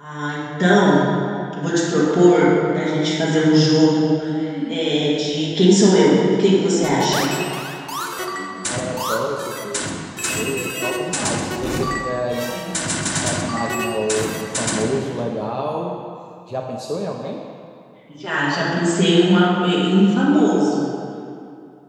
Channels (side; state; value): both; identical; correlation 1.00